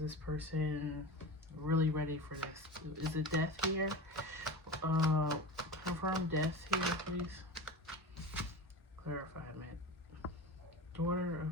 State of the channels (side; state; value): both; normal; correlation 0.29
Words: person really ready for this? Is it Death here? Confirm Death here, please. Clarifiement. Daughter